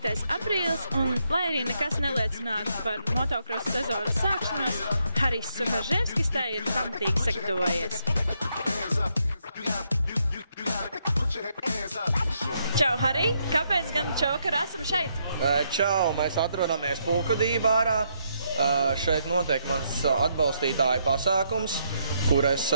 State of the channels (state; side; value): inverted; both; correlation -0.76